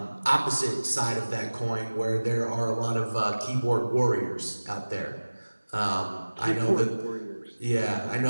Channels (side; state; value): both; inverted; correlation -1.00